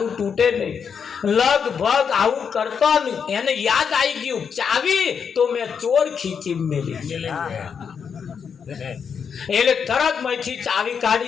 તૂટે નહીં. લગભગ આવું કરતો એને યાદ આવી ગયું ચાવી તો મેં ચોર ખીચી મેલી એટલે તરત માંથી ચાવી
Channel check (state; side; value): quieter; right; 6.7 dB